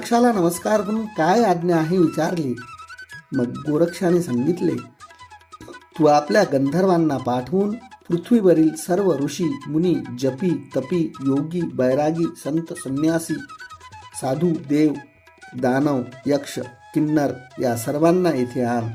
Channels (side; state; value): both; identical; correlation 1.00